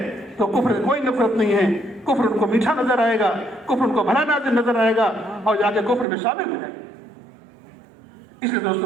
तो कुफ्र से कोई नफरत नहीं है, कुफ्र उनको मीठा नजर आएगा, कुफ्र उनको भला नाज़िर नजर आएगा और जाके कुफ्र में शामिल हो जाएगा। इसलिए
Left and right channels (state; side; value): drops out; left; at 6.1 s